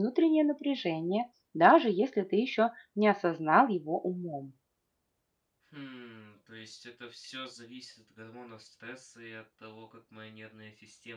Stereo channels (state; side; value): identical; both; correlation 1.00